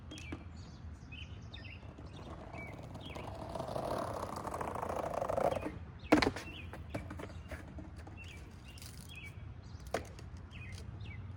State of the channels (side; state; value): both; identical; correlation 1.00